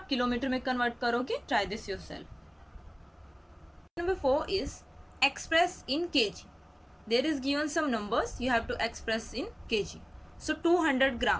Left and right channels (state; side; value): identical; both; correlation 1.00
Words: किलोमीटर में कन्वर्ट करोगे. Try this yourself. Number 4 is express in kg. There is given some numbers you have to express in kg. So 200